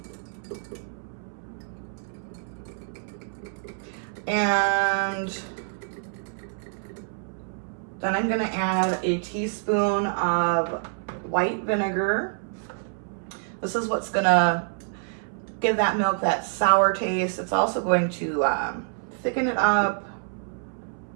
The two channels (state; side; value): silent; left; 60 dB below the other